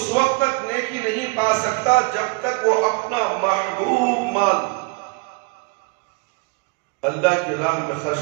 وقت تک نیکی نہیں پا سکتا جب تک وہ اپنا محبوب مال اللہ کی راہ میں خرچ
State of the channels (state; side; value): quieter; left; 30.0 dB